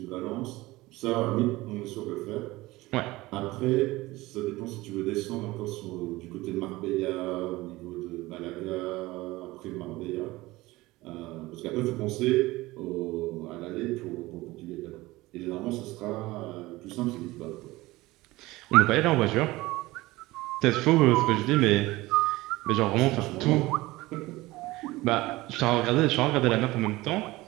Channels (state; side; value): quieter; left; 19.5 dB